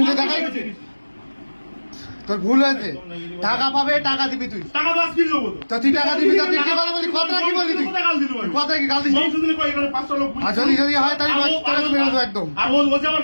দেখাই তোর ভুল হয়েছে টাকা পাবে টাকা দিবি তুই তো তুই টাকা দিবি তো তুই কি কথা বলি কথা কি বলি তুই কথা কি গাল দিস আর যদি যদি হয় তাহলে তোকে মেরে দেবো একদম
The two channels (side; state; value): both; inverted; correlation -1.00